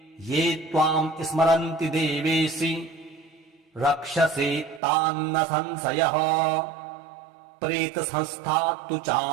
ये त्वाम् स्मरन्ति देवेशि रक्षसे तान्न संशयः। प्रेतसंस्था तु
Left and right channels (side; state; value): left; drops out; at 4.8 s